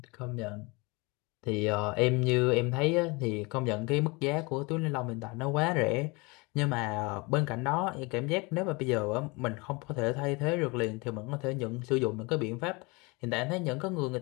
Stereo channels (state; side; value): quieter; right; 26.9 dB